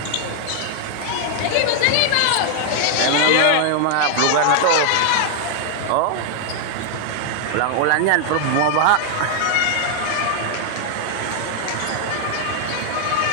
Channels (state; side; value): different; both; correlation 0.00